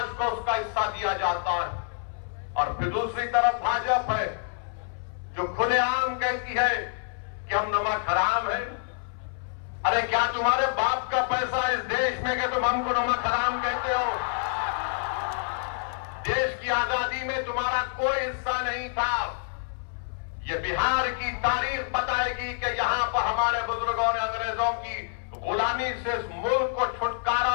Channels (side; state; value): right; silent; 60 dB below the other